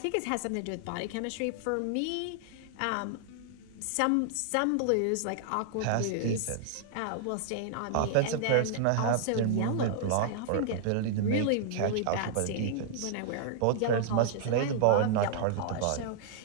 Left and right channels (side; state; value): both; different; correlation -0.01